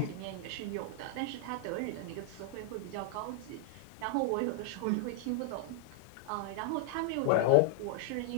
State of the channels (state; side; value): different; both; correlation -0.01